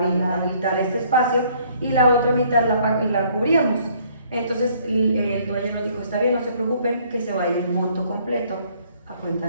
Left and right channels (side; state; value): both; inverted; correlation -0.62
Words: este espacio, y la otra mitad la cubríamos. Entonces el dueño nos dijo, está bien, no se preocupen, que se vaya el monto completo a cuenta